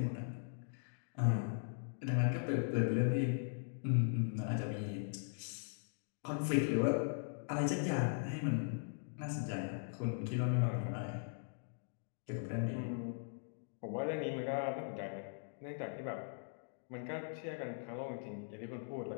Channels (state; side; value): silent; right; digital silence